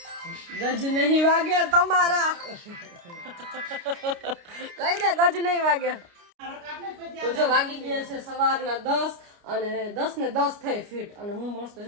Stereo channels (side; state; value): left; late; 29 ms